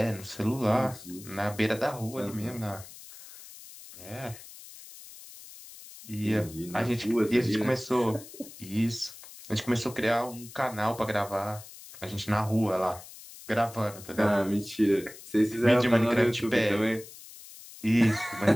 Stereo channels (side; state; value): left; noise; hiss, 17 dB below the sound